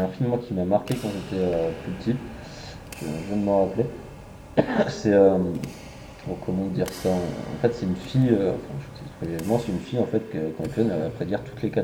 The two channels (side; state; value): both; identical; correlation 1.00